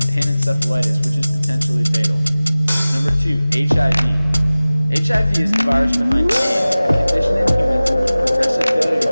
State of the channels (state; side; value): inverted; both; correlation -0.98